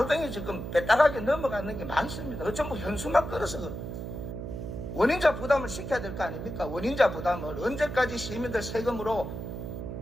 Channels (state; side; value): noise; right; hum, 7 dB below the sound